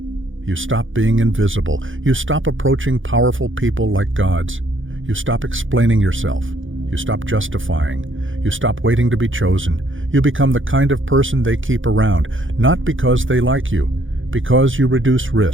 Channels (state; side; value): late; left; 0.57 ms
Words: You stop being invisible. You stop approaching powerful people like gods. You stop explaining yourself. You stop justifying. You stop waiting to be chosen. You become the kind of person they keep around, not because they like you, because you reduce